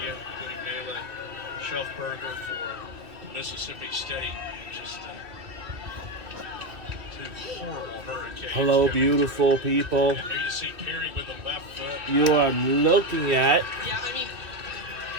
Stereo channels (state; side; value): late; left; 2.7 ms